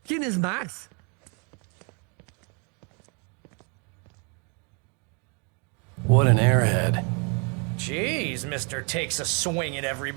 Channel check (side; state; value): left; quieter; 35.1 dB